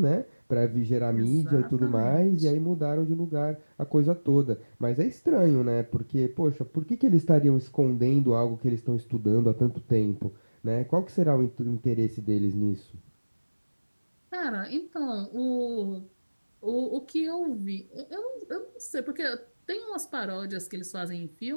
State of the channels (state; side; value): inverted; both; correlation -1.00